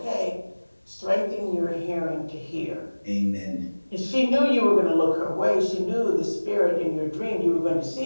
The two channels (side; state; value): both; inverted; correlation -1.00